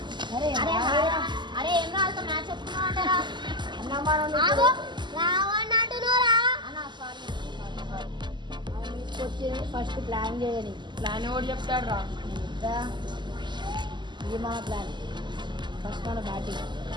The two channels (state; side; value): late; left; 0.22 ms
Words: అరే అరే ఏం రాదు, మ్యాచ్ చెప్తున్నా అంటారా? అన్న మనం రావని అంటున్నారా? వచ్చి ఫస్ట్ ప్లాన్ చేయని. ప్లాన్ ఎవరు చెప్తాడు రా? ఇది మన ప్లాన్. ఫస్ట్ మన బ్యాటింగ్.